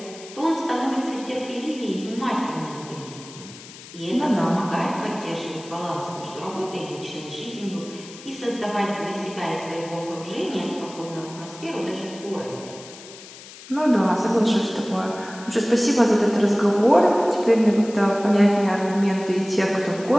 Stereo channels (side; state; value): left; noise; hiss, 17 dB below the sound